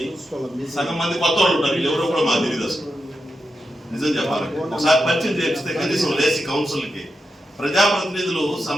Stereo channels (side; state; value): both; normal; correlation 0.87